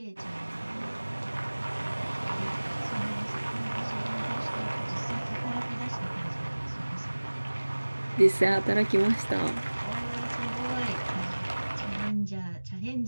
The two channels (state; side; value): inverted; both; correlation -1.00